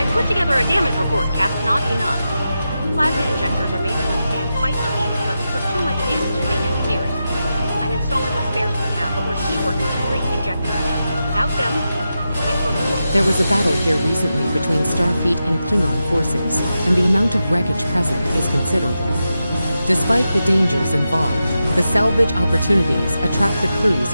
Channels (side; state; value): both; inverted; correlation -0.89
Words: Put together a damage report, Cap. Not enough. Plasma injectors are made to withstand quite a beating, but we took too much damage in main engineering. I'm installing what spares we have, but we're short 3 injectors. Without them, it wouldn't work. There was a battle here recently between Starfleet and Klingon forces, and the amount of wreckage present is considerable. Despite the dangers involved, the salvage opportunities attract the